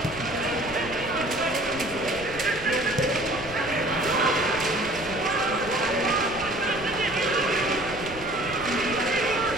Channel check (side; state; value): right; noise; rumble, 16 dB below the sound